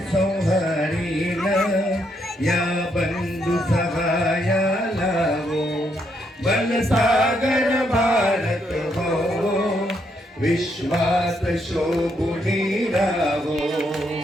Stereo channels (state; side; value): normal; both; correlation 0.76